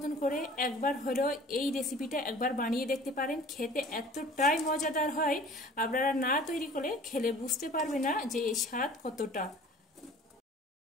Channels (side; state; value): both; normal; correlation 0.47